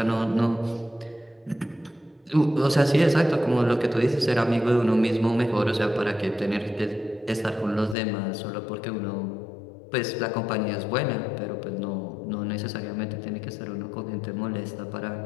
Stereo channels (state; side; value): drops out; right; at 8.0 s